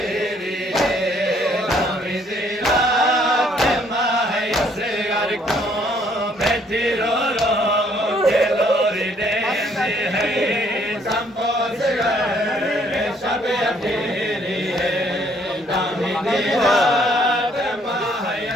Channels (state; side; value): normal; both; correlation 0.65